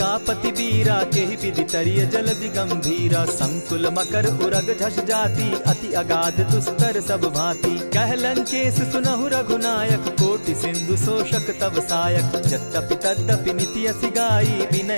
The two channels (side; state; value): both; inverted; correlation -1.00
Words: वीरा, केहि विधि तरिय जलधि गंभीरा। संकुल मकर उरग झष जाति, अति अगाध दुस्तर सब भांति। कह लंकेश सुनहु रघुनायक, कोटि सिंधु शोषक तब सायक। यद्यपि तद्यपि निति असि गाई,